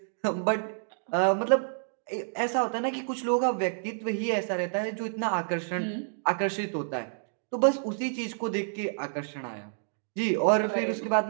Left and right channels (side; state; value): left; silent; digital silence